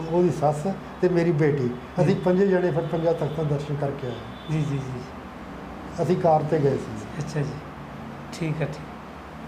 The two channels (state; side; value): identical; both; correlation 1.00